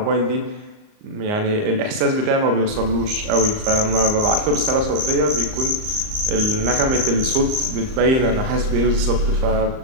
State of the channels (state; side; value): late; left; 38 ms